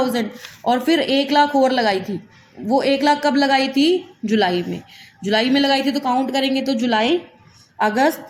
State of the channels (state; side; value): identical; both; correlation 1.00